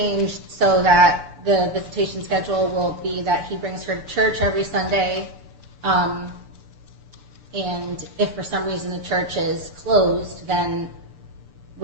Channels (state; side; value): late; left; 6.9 ms